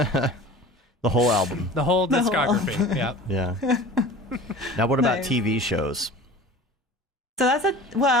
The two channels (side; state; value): both; normal; correlation 0.40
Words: The whole album. The whole discography. Yeah. Yeah. Now, what about Nice. TV shows? So